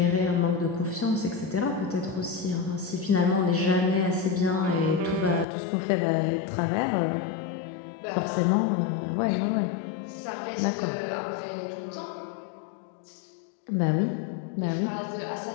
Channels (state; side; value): drops out; right; at 5.5 s